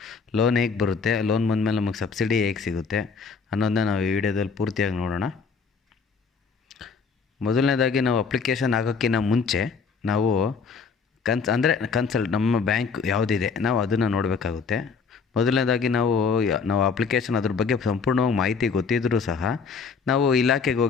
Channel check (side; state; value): right; quieter; 5.3 dB